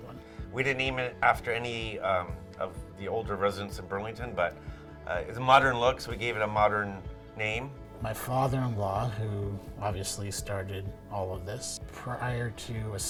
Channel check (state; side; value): identical; both; correlation 1.00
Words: one. We didn't name it after any of the older residents in Burlington, but it's a modern look, so we gave it a modern name. My father-in-law, who obviously started all of this, prior to